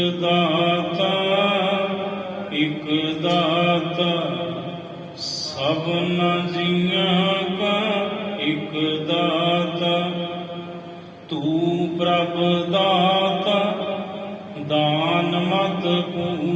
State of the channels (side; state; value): both; identical; correlation 1.00